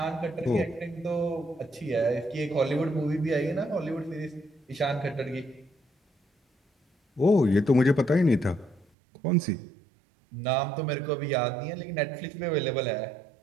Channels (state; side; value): drops out; left; at 8.8 s